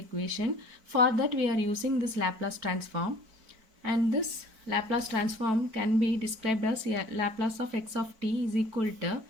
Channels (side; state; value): left; late; 4.5 ms